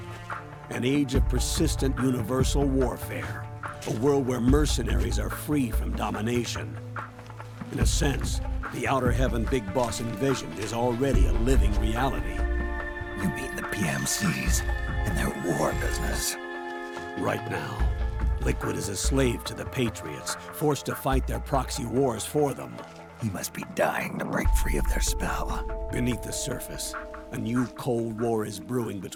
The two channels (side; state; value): both; identical; correlation 1.00